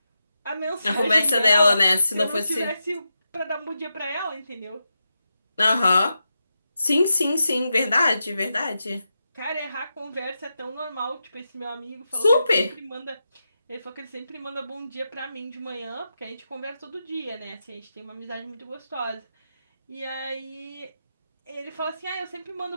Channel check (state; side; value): inverted; both; correlation -0.88